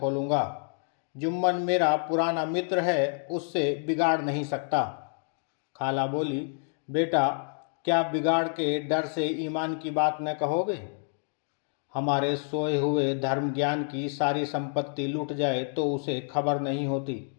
जुम्मन मेरा पुराना मित्र है, उससे बिगाड़ नहीं सकता। खाला बोली, बेटा क्या बिगाड़ के डर से ईमान की बात न कहोगे? हमारे सोए हुए धर्म ज्ञान की सारी संपत्ति लूट जाए तो उसे खबर नहीं होती,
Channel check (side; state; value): right; silent; 58 dB below the other